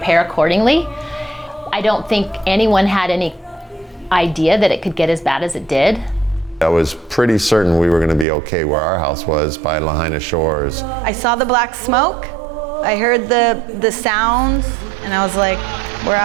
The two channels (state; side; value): drops out; left; at 8.2 s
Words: accordingly. I don't think anyone had any idea that it could get as bad as it did. I was pretty certain we were going to be okay where our house was by Lahaina Shores. I saw the black smoke, I heard the sounds, and I was like, we're